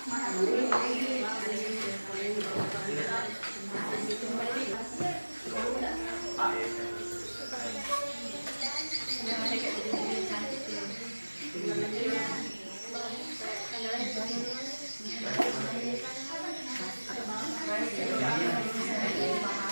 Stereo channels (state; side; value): inverted; both; correlation -1.00